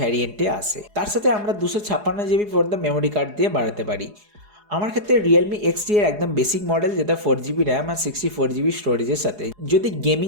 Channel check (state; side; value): late; left; 4.8 ms